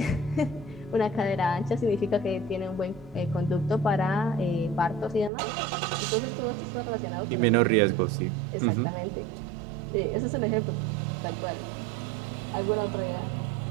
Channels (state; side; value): drops out; left; at 5.3 s